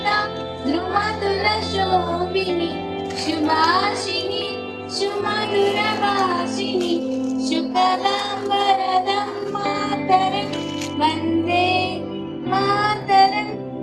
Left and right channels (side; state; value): both; identical; correlation 1.00